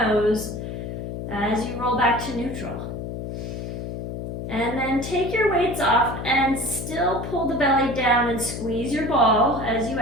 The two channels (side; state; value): left; noise; hum, 6 dB below the sound